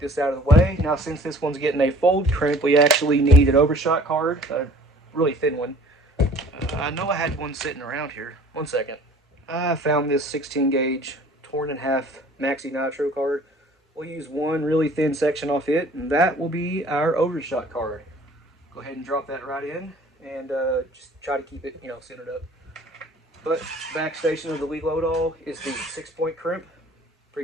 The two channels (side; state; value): both; normal; correlation 0.51